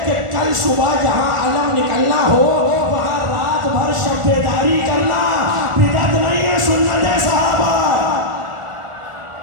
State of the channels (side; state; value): left; late; 1.4 ms